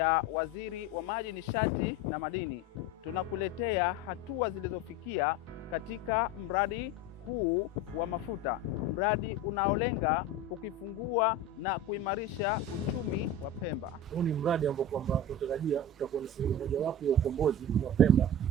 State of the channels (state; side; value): normal; both; correlation 0.29